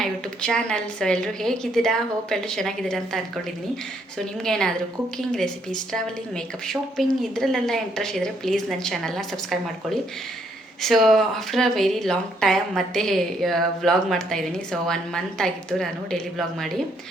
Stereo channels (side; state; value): both; normal; correlation 0.71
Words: YouTube channel. So ಎಲ್ಲರೂ ಹೇಗಿದ್ದೀರಾ? ಹೋಪ್ ಎಲ್ಲರೂ ಚೆನ್ನಾಗಿದ್ದೀರಾ ಅಂತ ಅಂದ್ಕೊಂಡಿದ್ದೀನಿ. ಸೊ ನಿಮ್ಗೇನಾದರೂ cooking, recipes, travelling, makeup, shopping ಇದರಲ್ಲೆಲ್ಲ ಇಂಟ್ರೆಸ್ಟ್ ಇದ್ದರೆ ಪ್ಲೀಸ್ ನನ್ನ ಚಾನಲ್ನ ಸಬ್ಸ್ಕ್ರೈಬ್ ಮಾಡ್ಕೊಳ್ಳಿ. So after a very long time ಮತ್ತೆ ವ್ಲಾಗ್ ಮಾಡ್ತಾಯಿದ್ದೀನಿ. ಸೊ 1 ಮಂತ್ ಆಗಿತ್ತು ನಾನು ಡೈಲಿ ವ್ಲಾಗ್ ಮಾಡಿ,